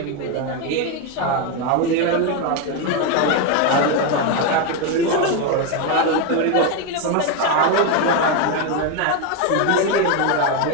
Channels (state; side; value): different; both; correlation 0.02